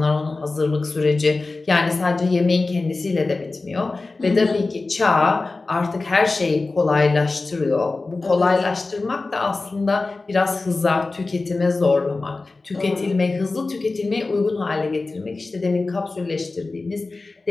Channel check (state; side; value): quieter; right; 3.5 dB